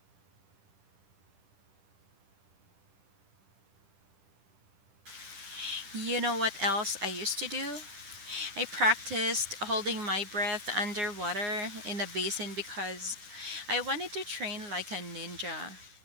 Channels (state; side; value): late; left; 10 ms